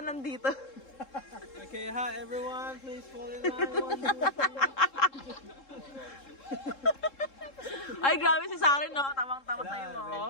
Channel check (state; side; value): late; right; 3.7 ms